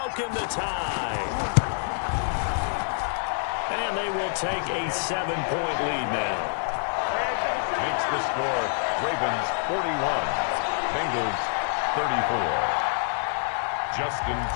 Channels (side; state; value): right; silent; 60 dB below the other